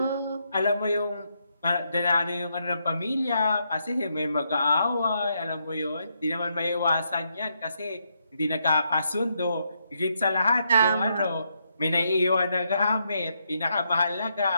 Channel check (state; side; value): inverted; both; correlation -0.79